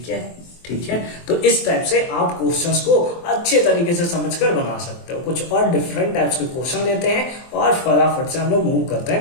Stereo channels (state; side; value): late; right; 23 ms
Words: है, ठीक है। तो इस टाइप से आप क्वेश्चंस को अच्छे तरीके से समझकर बना सकते हो। कुछ और डिफरेंट टाइप्स के क्वेश्चन लेते हैं और फटाफट से हम लोग मूव करते